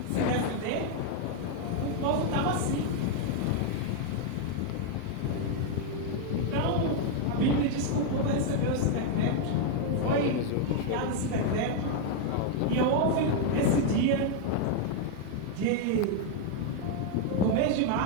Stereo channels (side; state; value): both; different; correlation 0.01